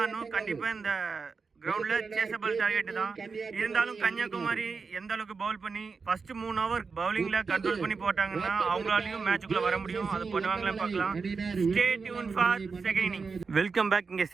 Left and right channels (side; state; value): left; quieter; 4.9 dB